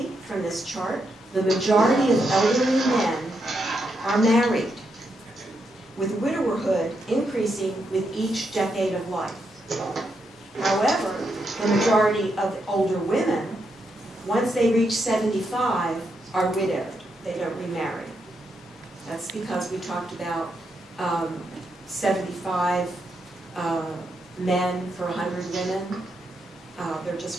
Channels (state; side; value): normal; both; correlation 0.81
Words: from this chart, the majority of elderly men are married, with widowerhood increasing with each decade of life. However, the majority of older women, once they reach 75, are widowed. They don't remarry. That's because we talked about 75 men for 100 women. There